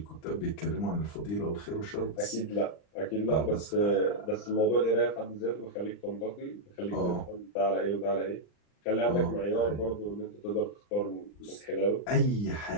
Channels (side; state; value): right; late; 39 ms